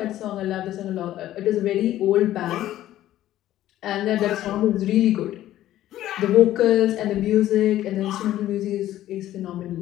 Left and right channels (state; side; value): quieter; right; 13.5 dB